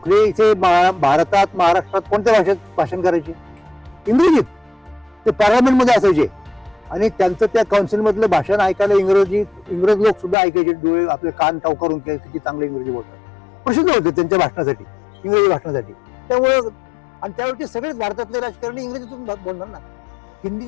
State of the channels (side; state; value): right; drops out; at 10.4 s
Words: इथे भारतात, महाराष्ट्रात कोणत्या भाषेत भाषण करायचे, इंग्रजीत. ते पार्लमेंटमध्ये असायचे आणि त्यांचं त्या काउन्सिलमधलं भाषण ऐकायला इंग्रज लोक सुद्धा ऐकायचे, डोळे आपले कान टाव करून किती चांगले इंग्रजी बोलतात, प्रसिद्ध होते त्यांच्या भाषणासाठी, इंग्रजी भाषणासाठी. त्यामुळं आणि त्यावेळी सगळेच भारतातले राजकारणी इंग्रजीतून बोलणार ना,